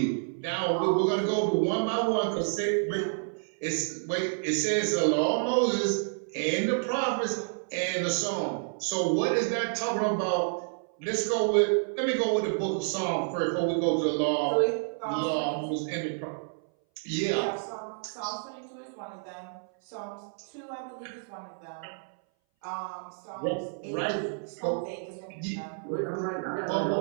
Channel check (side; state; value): left; silent; 58 dB below the other